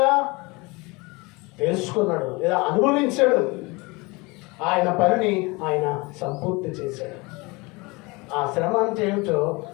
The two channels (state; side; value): quieter; right; 25.5 dB